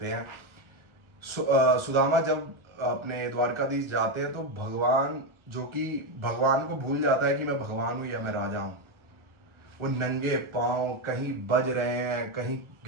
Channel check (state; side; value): late; left; 1.4 ms